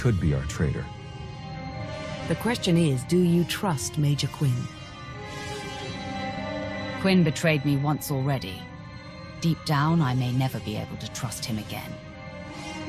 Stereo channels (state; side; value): identical; both; correlation 1.00